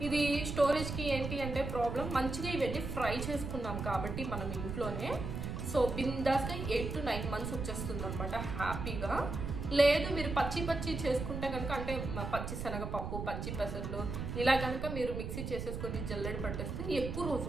ఇది స్టోరేజ్కి ఏంటి అంటే ప్రాబ్లం, మంచిగా ఇవన్నీ ఫ్రై చేసుకున్నాం కాబట్టి మనం ఇంట్లోనే. సో బిందాస్గా 8 to 9 months వచ్చేస్తుంది అనమాట హ్యాపీగా. లేదు మీరు పచ్చి చేసుకుంటే కనుక అంటే పచ్చి శనగపప్పు, పచ్చి పెసర్లు ఇలా కనుక మీరు మిక్సీ చేసేసుకొని జల్లెడ పట్టేస్తే ఎక్కువ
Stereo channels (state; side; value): noise; right; rumble, 5 dB below the sound